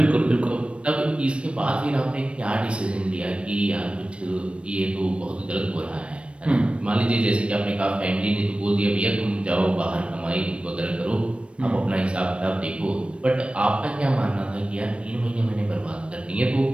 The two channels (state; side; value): late; left; 0.059 ms